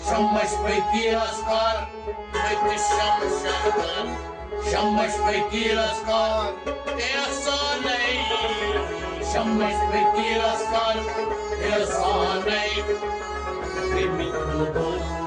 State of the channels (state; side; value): identical; both; correlation 1.00